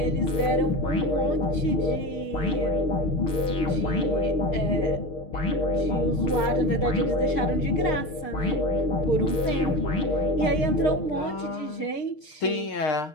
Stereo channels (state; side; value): late; right; 6.5 ms